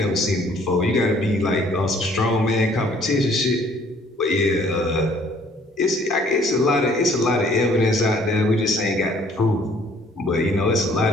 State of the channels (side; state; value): both; normal; correlation 0.59